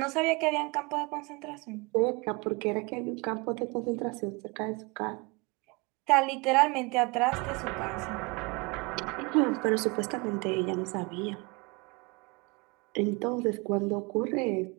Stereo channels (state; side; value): quieter; left; 27.8 dB